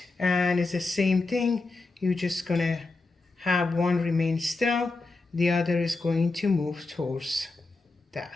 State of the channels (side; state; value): right; quieter; 3.4 dB